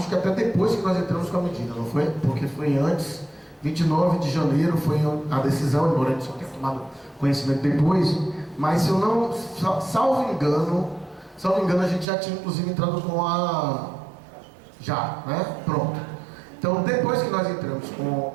que até depois que nós entramos com a medida, não foi? Porque foi antes, 29 de janeiro foi a decisão, embora a gente só tenha tomado conhecimento depois, mas se eu não, salvo engano, a gente já tinha inclusive entrado com né? Pronto. Então, depois que nós entramos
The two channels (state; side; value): drops out; left; at 12.1 s